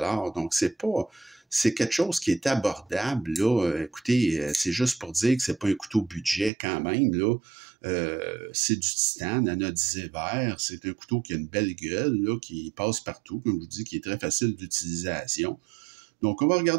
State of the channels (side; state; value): left; drops out; at 6.5 s